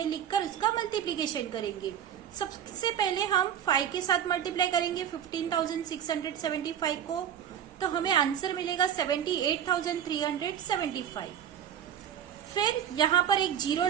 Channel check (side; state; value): left; quieter; 9.4 dB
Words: लिखकर उसका मल्टीप्लीकेशन करेंगे। सबसे पहले हम 5 के साथ मल्टीप्लाई करेंगे 15,675 को, तो हमें आंसर मिलेगा 78,375। फिर यहाँ पर एक 0